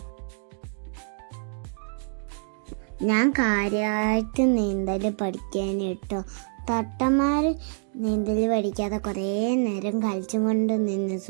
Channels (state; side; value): silent; left; 61 dB below the other